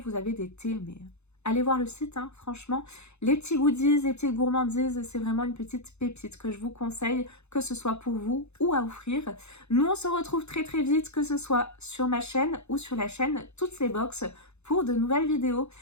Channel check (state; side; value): late; right; 0.81 ms